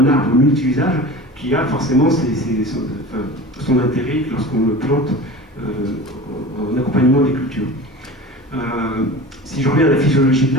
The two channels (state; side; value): normal; both; correlation 0.35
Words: arbre multi-usage qui a forcément son intérêt lorsqu'on le plante en accompagnement des cultures. Si je reviens à la physiologie de